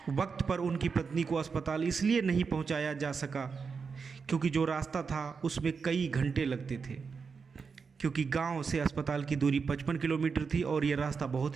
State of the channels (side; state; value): left; quieter; 5.4 dB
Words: वक्त पर उनकी पत्नी को अस्पताल इसलिए नहीं पहुंचाया जा सका क्योंकि जो रास्ता था उसमें कई घंटे लगते थे, क्योंकि गांव से अस्पताल की दूरी 55 किलोमीटर थी और यह रास्ता